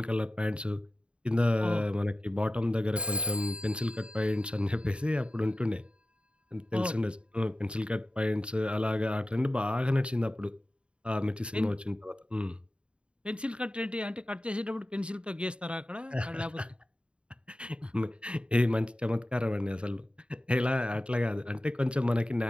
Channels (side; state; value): left; late; 0.056 ms